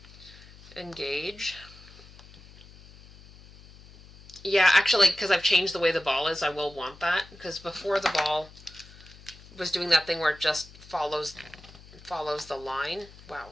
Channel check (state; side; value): noise; left; hum, 21 dB below the sound